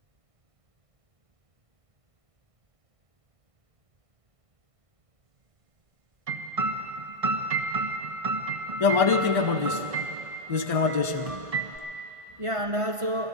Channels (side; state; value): left; late; 1.5 ms